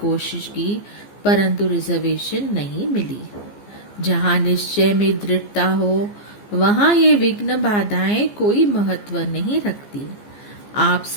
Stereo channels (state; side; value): late; right; 15 ms